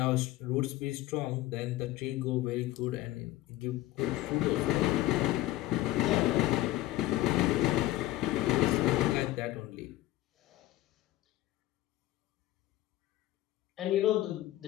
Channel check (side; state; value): right; quieter; 15.9 dB